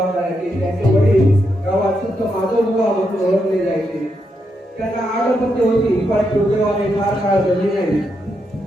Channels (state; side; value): normal; both; correlation 0.82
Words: करायचे. त्यांचे वडील गावात संत माधव बुवा म्हणून ओळखले जायचे. त्यांना 8 पत्नी होती, पण दुर्दैवाने फार काळ जगली नाही.